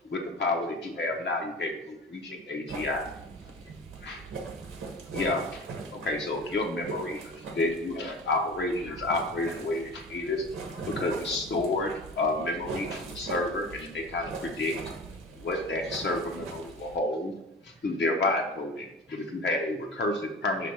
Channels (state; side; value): normal; both; correlation 0.35